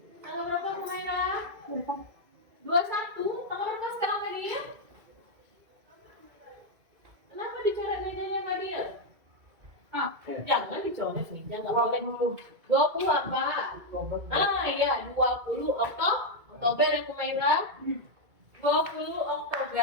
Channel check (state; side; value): late; left; 2.3 ms